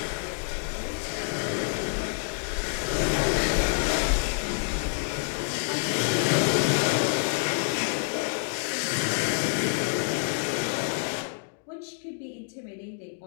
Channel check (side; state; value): right; silent; digital silence